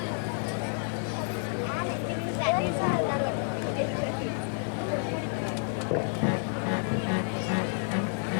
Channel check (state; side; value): silent; right; 55 dB below the other